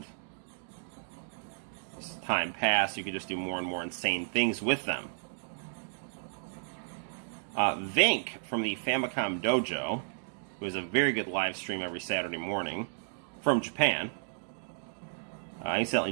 as time passed, you could just do more and more insane things with them. Vink from the Famicom Dojo, who has a very good live stream every Saturday morning from Japan. I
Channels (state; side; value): silent; left; digital silence